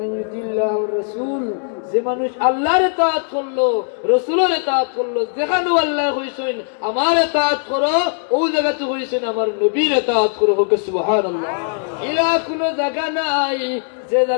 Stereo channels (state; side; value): silent; right; 67 dB below the other